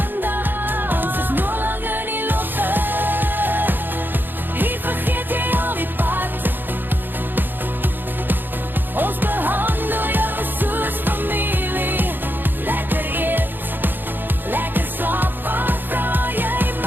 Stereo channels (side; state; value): left; late; 0.094 ms